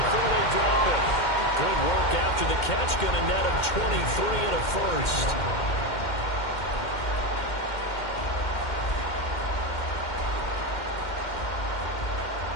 they drop it. Good work after the catch, going to net him 23 and a first.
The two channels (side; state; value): right; late; 2.1 ms